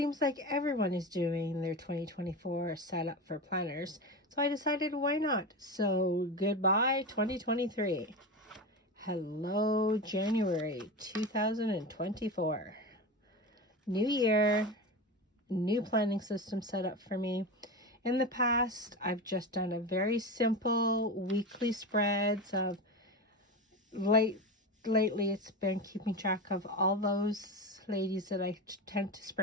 like everyone is doing their 2024 setup for planners, so I decided why not? So goodbye 2023. Hello January 2024. New year, new planning system set up for me. In the past, I've just done a very simple weekly spreads of lately it's been keeping track of all those ladies that I tend to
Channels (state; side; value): normal; both; correlation 0.23